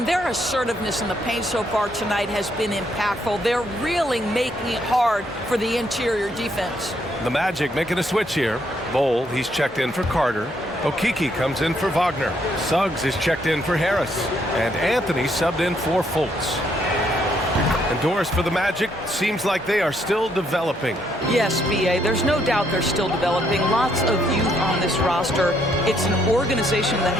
their assertiveness in the paint so far tonight has been impactful. They're really making it hard for the interior defense. The Magic making a switch here. Bowl, he's checked in for Carter. Okeke comes in for Wagner. Suggs is checked in for Harris. And Anthony subbed in for Fultz. And Doris, for the Magic, seems like they are still developing. Yes, B.A., there's no doubt they're still developing. Lots of youth on this roster. It's an organization that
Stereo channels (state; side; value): normal; both; correlation 0.72